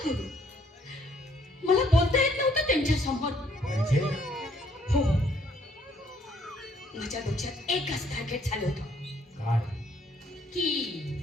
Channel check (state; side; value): normal; both; correlation 0.66